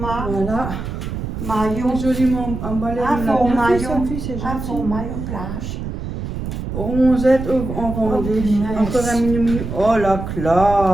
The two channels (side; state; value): right; noise; rumble, 6 dB below the sound